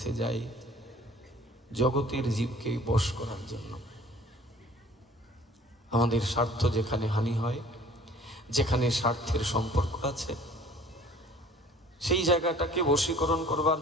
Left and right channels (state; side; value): normal; both; correlation 0.50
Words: যাই, জগতের জীবকে বশ করার জন্য। আমাদের স্বার্থ যেখানে হানি হয়, যেখানে স্বার্থের সম্পর্ক আছে, সেই জায়গাটাকে বশীকরণ করবার